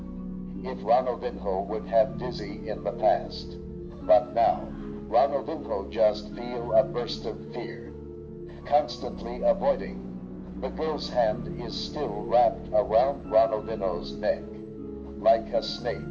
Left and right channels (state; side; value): identical; both; correlation 1.00